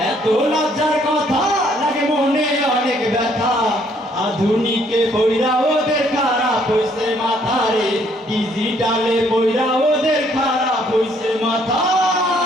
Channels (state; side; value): normal; both; correlation 0.66